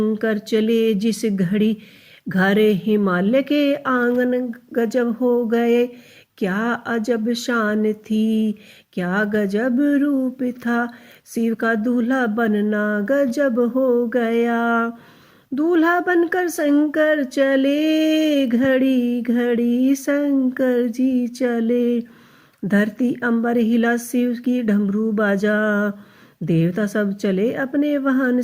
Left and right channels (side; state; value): both; identical; correlation 1.00